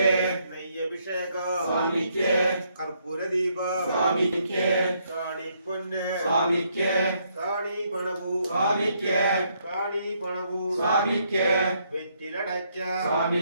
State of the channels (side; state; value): both; inverted; correlation -0.73